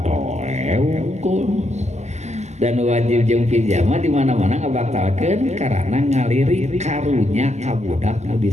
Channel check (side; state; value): left; late; 0.33 ms